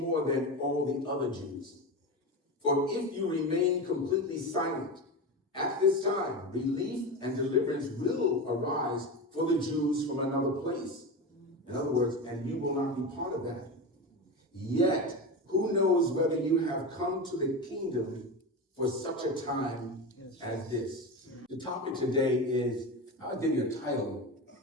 than all the other Jews. For if you remain completely silent at this time, relief and deliverance will arise for the Jews from another place." In other words, and you will not be part of that. "Yet, who knows whether you have come to the kingdom for such a time as this?" The topic today is, I'll give you a title.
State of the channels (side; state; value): both; normal; correlation 0.22